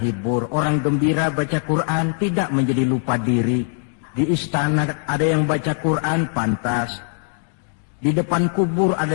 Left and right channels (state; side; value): silent; right; digital silence